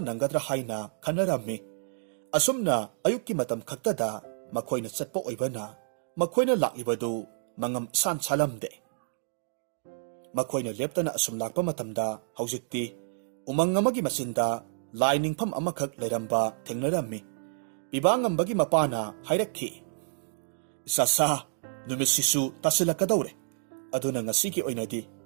nangadra haina khanarammi asumna ayukki matam khaktada makhoina chatpa oibana makhoina laklibadu mangam san salamde makhoina leptana asum lakpa matamda haujikti umang amagi masinda lainingpham amakhak leiramba thengnarammi bibangambagi mapana hairakhi sasa numisisu tasilakadawre aduna ngasigi oinadi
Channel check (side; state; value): left; silent; digital silence